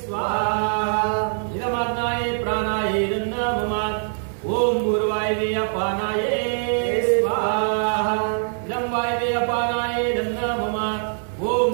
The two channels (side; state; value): left; silent; 63 dB below the other